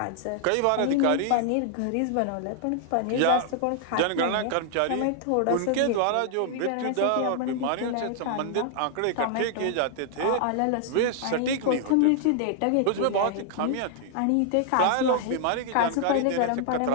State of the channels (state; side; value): different; both; correlation 0.00